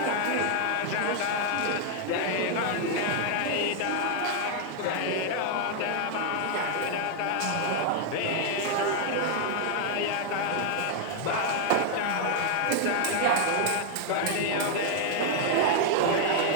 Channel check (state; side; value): different; both; correlation 0.00